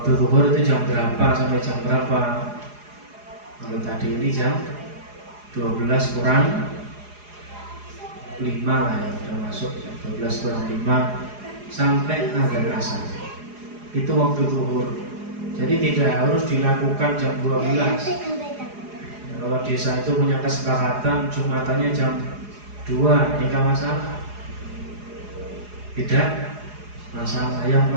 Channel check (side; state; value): left; late; 4.8 ms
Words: zuhur itu jam berapa sampai jam berapa? Kalau tadi ini jam 12 kurang 5 lah ya, udah masuk jam 12 kurang 5 sampai azan asar. Itu waktu zuhur. Jadi tidak harus dilakukan jam 12. Kalau desa itu punya kesepakatan Jumatannya jam 2, ini kan masalah. Tidak masalah. Yang